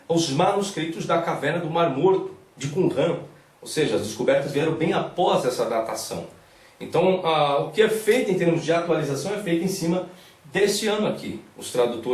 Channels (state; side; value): identical; both; correlation 1.00